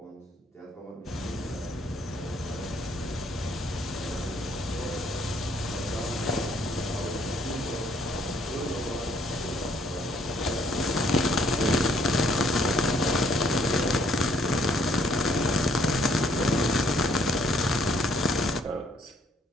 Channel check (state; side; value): normal; both; correlation 0.66